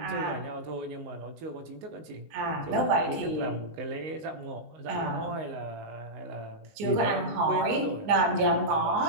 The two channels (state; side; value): late; left; 19 ms